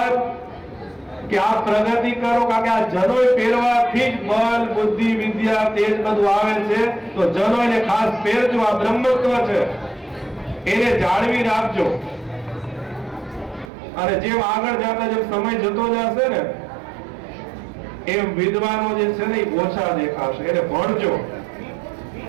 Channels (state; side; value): drops out; left; at 13.7 s